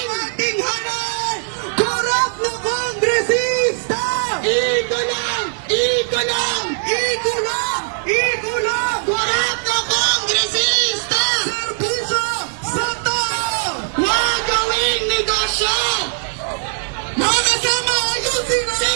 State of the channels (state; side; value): silent; left; digital silence